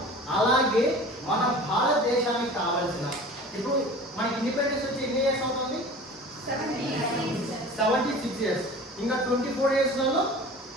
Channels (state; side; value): normal; both; correlation 0.40